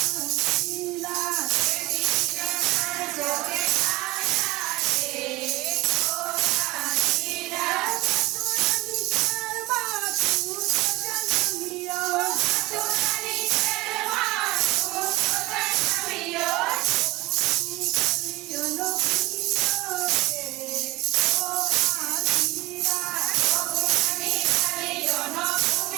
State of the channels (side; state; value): left; quieter; 20.7 dB